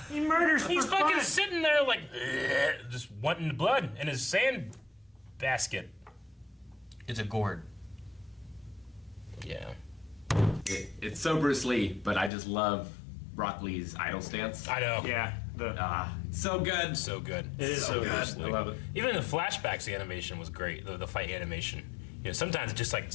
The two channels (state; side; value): drops out; right; at 12.3 s